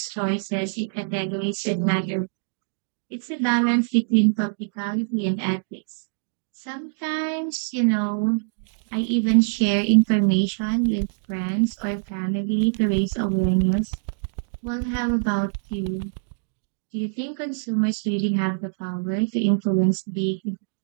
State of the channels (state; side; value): silent; left; digital silence